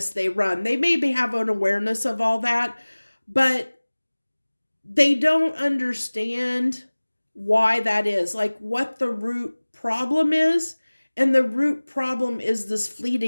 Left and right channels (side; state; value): both; inverted; correlation -1.00